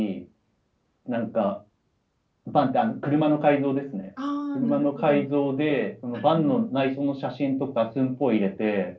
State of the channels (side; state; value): both; identical; correlation 1.00